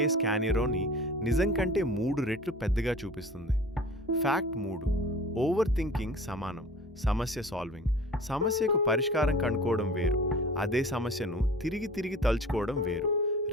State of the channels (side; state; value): both; normal; correlation 0.42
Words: స్కానిరోని నిజం కంటే 3 రెట్లు పెద్దగా చూపిస్తుంది. ఫ్యాక్ట్ 3, ఓవర్ థింకింగ్ సమానం సమస్య సాల్వింగ్. సమస్యకు పరిష్కారం కనుక్కోవడం వేరు, అదే సమస్యను తిరిగి తిరిగి తలుచుకోవడం వేరు.